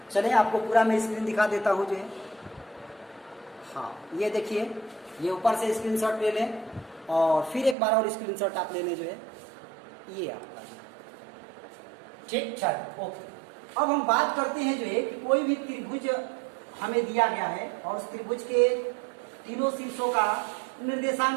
चलिए आपको पूरा मैं स्क्रीन दिखा देता हूँ जो है। हाँ, ये देखिए, ये ऊपर से स्क्रीनशॉट ले लें और फिर एक बार और स्क्रीनशॉट आप ले लें जो है, ये आपका ठीक। चलो ओके, अब हम बात करते हैं जो है कि कोई भी त्रिभुज हमें दिया गया है और उस त्रिभुज के तीनों शीर्षों का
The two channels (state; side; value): drops out; left; at 7.8 s